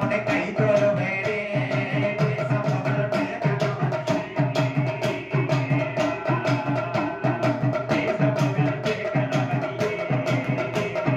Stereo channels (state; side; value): identical; both; correlation 1.00